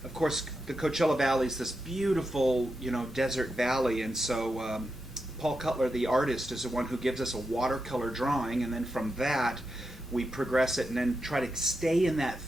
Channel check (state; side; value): normal; both; correlation 0.87